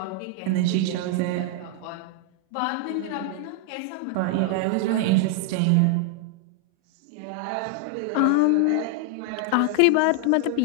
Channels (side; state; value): both; different; correlation 0.00